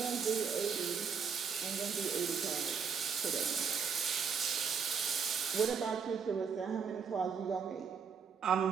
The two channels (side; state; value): left; quieter; 6.2 dB